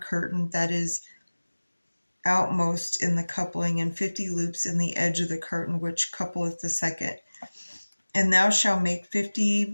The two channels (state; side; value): inverted; both; correlation -1.00